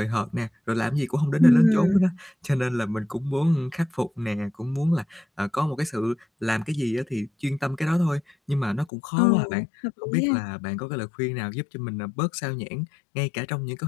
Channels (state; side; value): drops out; right; at 8.9 s